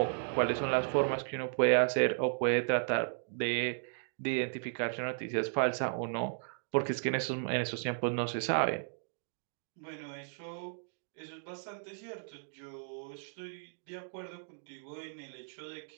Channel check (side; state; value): left; silent; digital silence